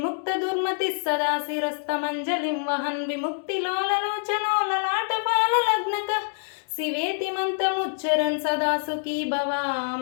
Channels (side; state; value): right; silent; 61 dB below the other